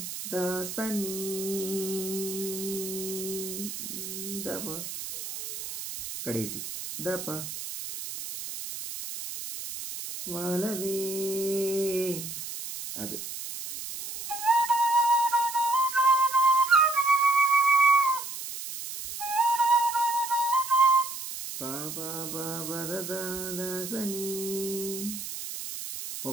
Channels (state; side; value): noise; right; hiss, 8 dB below the sound